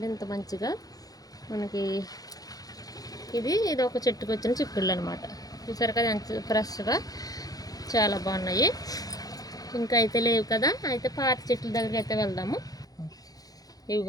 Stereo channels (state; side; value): late; right; 0.18 ms